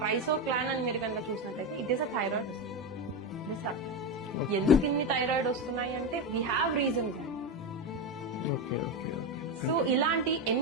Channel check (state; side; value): normal; both; correlation 0.14